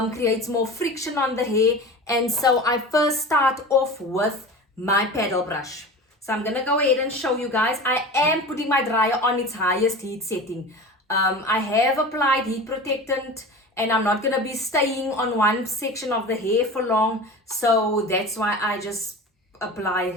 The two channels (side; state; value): both; normal; correlation 0.33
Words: creates more friction on the hair, and so I first start off with my paddle brush. So I'm gonna go ahead and show you guys. I am putting my dryer on its highest heat setting. I have applied heat protectant, and I'm not gonna be staying on one section of the hair for long, so that's why I just apply